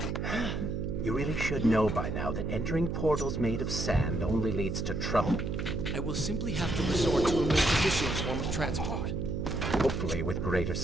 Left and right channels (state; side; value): noise; right; hum, 2 dB below the sound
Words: You really should know by now that entering portals made of sand only leads to trouble. I will simply have to resort to a more traditional form of transport. Hopefully with greater